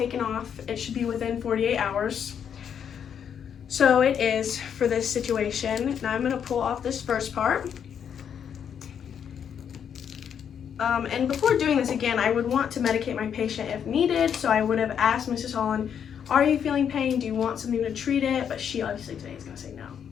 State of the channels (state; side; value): quieter; right; 8.1 dB